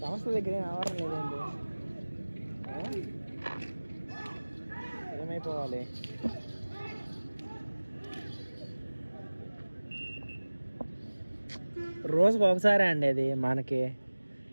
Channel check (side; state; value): both; inverted; correlation -1.00